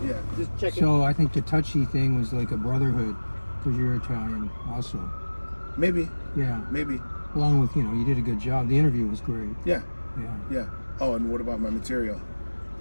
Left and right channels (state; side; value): inverted; both; correlation -1.00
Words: Yeah. Just check it. So I think the touchy thing was like a brotherhood because you're Italian also. Maybe, Yeah. maybe. Along with, you did a good job. The interview was great. Yeah, Yeah. yeah. Oh, and what about my material?